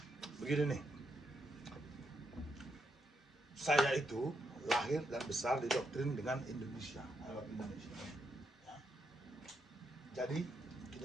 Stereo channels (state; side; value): normal; both; correlation 0.80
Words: begini nih. Saya itu lahir dan besar didoktrin dengan Indonesia, Arab Indonesia. Ya. Jadi